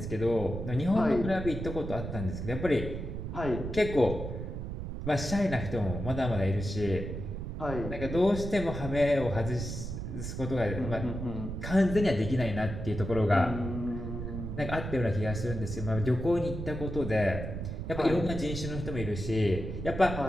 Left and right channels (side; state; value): right; noise; rumble, 6 dB below the sound